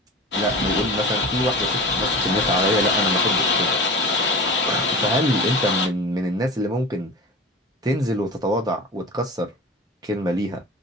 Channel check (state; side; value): normal; both; correlation 0.34